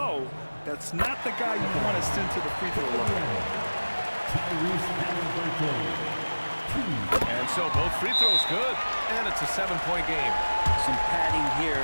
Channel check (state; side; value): inverted; both; correlation -1.00